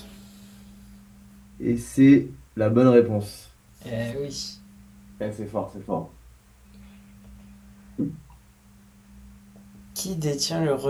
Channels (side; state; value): both; identical; correlation 1.00